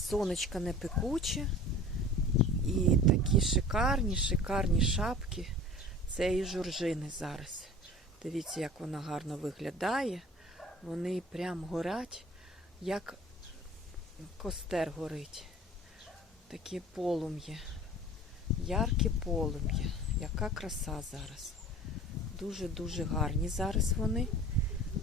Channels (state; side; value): normal; both; correlation 0.43